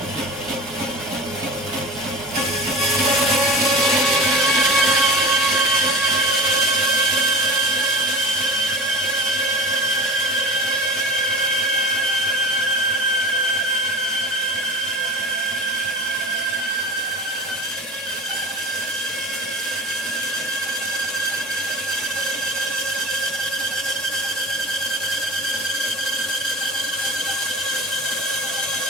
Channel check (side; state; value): both; normal; correlation 0.35